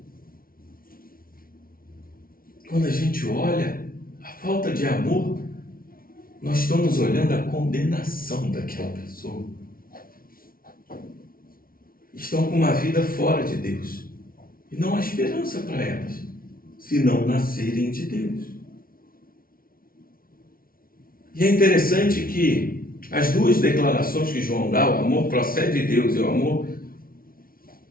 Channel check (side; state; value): right; late; 0.43 ms